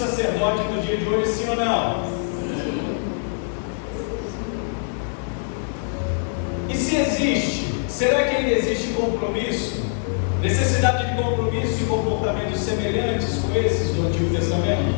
no dia de hoje, sim ou não? E se existe, será que ainda existe compromisso? Necessidade de compromisso e comportamentos semelhantes com esses do Antigo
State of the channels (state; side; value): silent; right; 63 dB below the other